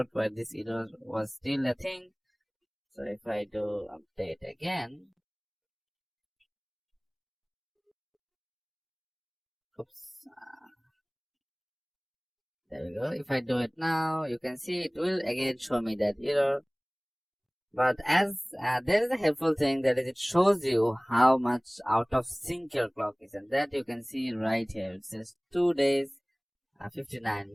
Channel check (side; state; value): both; identical; correlation 1.00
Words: where this error was still a thing. So if I do update again, oops, there we go. If I do it now, you can see it will again show me that error. But as there is a helpful thing, that is, it shows you how much out of sync your clock is, and that you can see right here. It says 2 days, 59